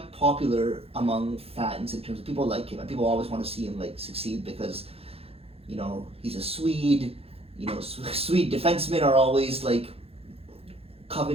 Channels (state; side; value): late; left; 0.28 ms